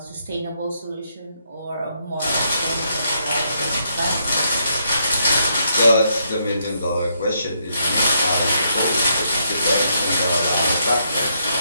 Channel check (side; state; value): both; inverted; correlation -0.75